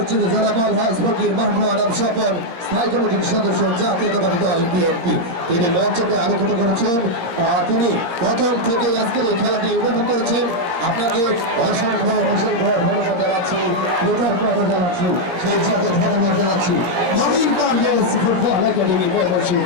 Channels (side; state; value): left; late; 17 ms